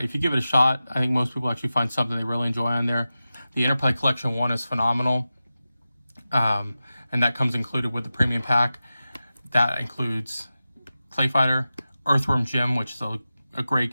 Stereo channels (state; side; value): inverted; both; correlation -0.94